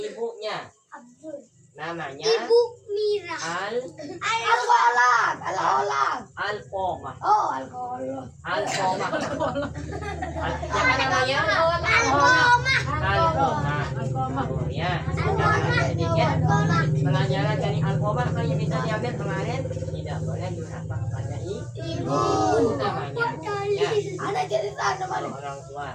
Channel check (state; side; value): identical; both; correlation 1.00